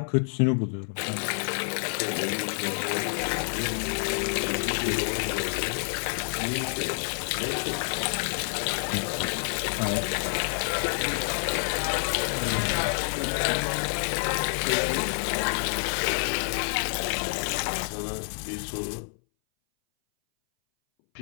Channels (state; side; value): silent; right; 59 dB below the other